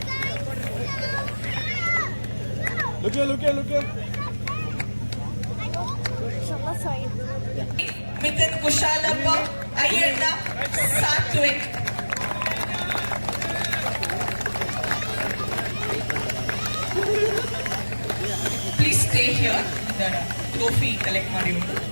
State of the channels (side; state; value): both; inverted; correlation -1.00